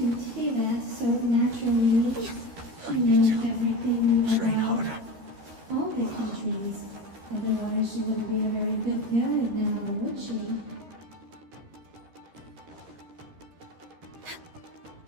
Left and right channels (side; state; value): left; late; 13 ms